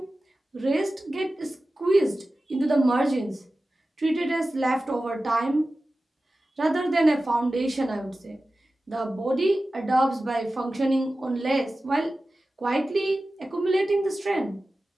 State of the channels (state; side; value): normal; both; correlation 0.95